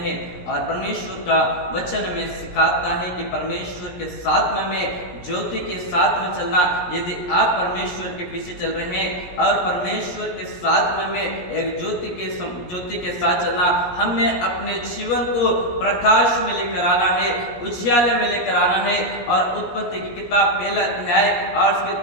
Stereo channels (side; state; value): right; late; 17 ms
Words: और परमेश्वर का वचन में सिखाता है कि परमेश्वर के साथ में ज्योति के साथ में चलना। यदि आप परमेश्वर के पीछे चल रहे हैं और परमेश्वर के साथ में एक ज्योति के साथ चलना, हमें अपने जीवन को प्रकाश में लेकर आना है, उजियाले में लेकर आना है। और उत्पत्ति की किताब पहला अध्याय और उसके